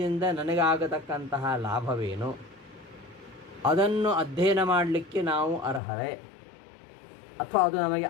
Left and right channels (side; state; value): right; drops out; at 5.8 s